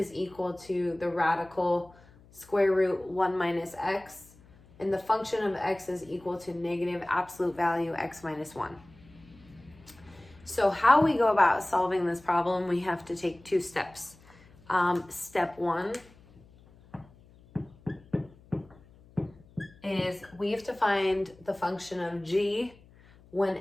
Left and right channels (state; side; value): noise; left; hum, 26 dB below the sound